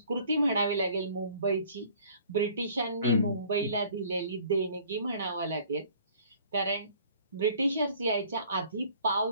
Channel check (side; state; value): both; inverted; correlation -0.53